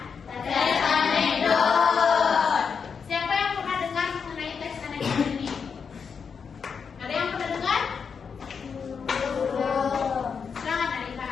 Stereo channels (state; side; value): quieter; right; 6.1 dB